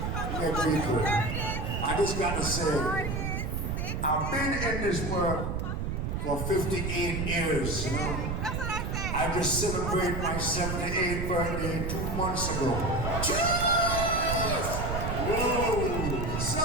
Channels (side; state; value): right; noise; rumble, 2 dB below the sound